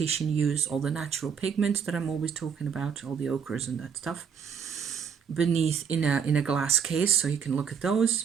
used, all the natural pigments that I'm always talking about, all the ochres and that stuff, beneath in a glass case, so you can look at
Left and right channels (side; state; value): left; quieter; 7.0 dB